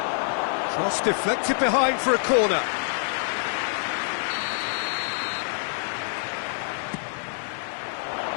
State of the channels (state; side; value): silent; right; 58 dB below the other